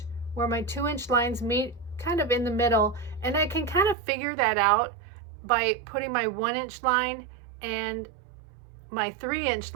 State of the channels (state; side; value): drops out; left; at 4.0 s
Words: where my 2-inch lines meet, kind of in the middle, and I can kind of figure that out by putting my 1-inch line and my 3-inch